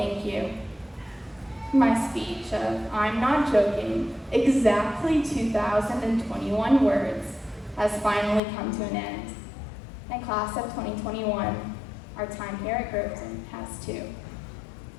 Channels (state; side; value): drops out; right; at 8.4 s